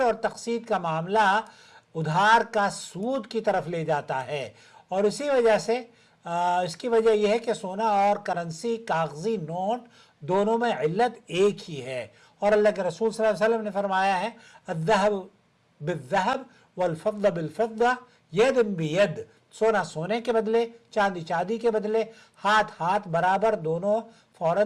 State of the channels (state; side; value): identical; both; correlation 1.00